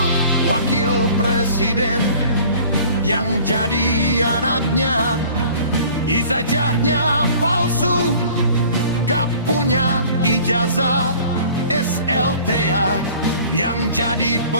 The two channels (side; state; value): both; inverted; correlation -0.49